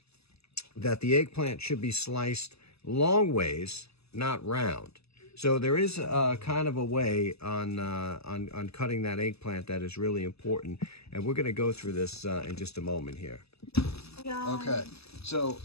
that the eggplant should be sliced long ways, not round. So there is kind of a way on cutting that eggplant that is really important, and we're going to go through this in just a moment here. Okay, so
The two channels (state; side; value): late; right; 0.79 ms